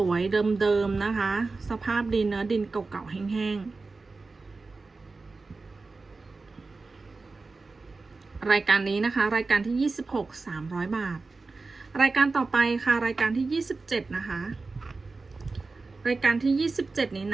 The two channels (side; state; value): left; quieter; 3.8 dB